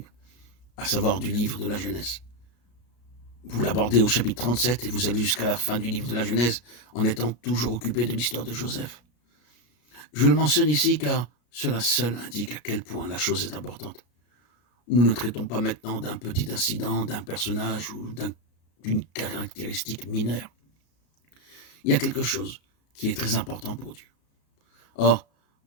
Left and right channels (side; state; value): right; late; 33 ms